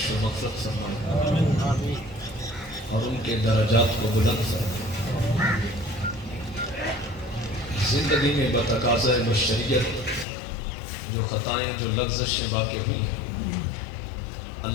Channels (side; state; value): right; drops out; at 10.2 s